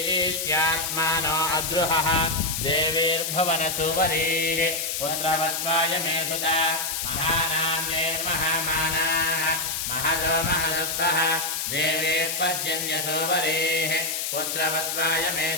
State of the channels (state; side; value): noise; left; hiss, 2 dB below the sound